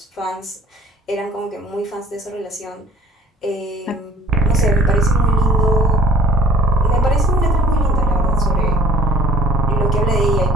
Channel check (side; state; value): both; normal; correlation 0.53